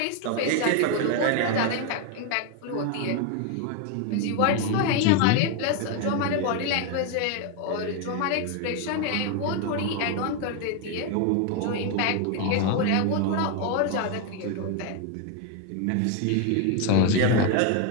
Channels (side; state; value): both; different; correlation 0.01